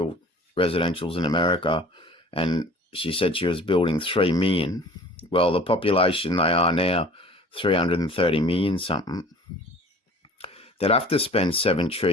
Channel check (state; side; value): normal; both; correlation 0.47